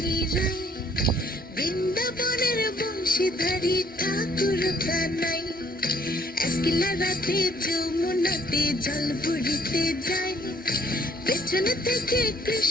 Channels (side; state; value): both; normal; correlation 0.62